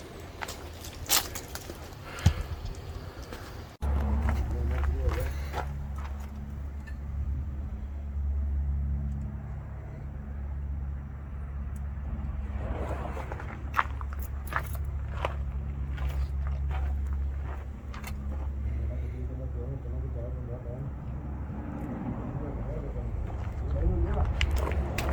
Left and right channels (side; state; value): both; identical; correlation 1.00